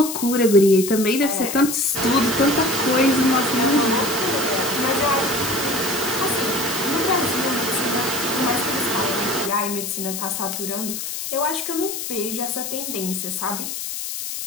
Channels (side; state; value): left; noise; hiss, 5 dB below the sound